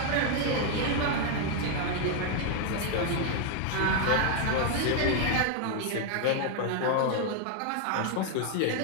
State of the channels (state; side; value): different; both; correlation 0.00